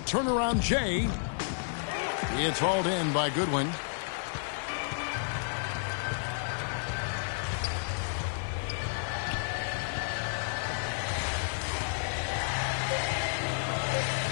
turnaround Jay. It's hauled in by Goodwin.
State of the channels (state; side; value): silent; right; 57 dB below the other